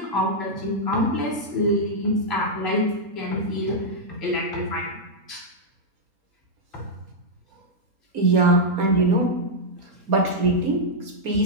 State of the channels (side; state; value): left; late; 4.3 ms